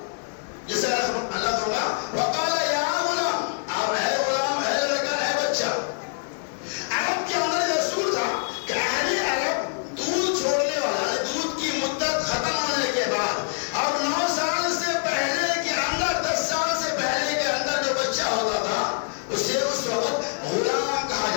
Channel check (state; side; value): silent; right; 62 dB below the other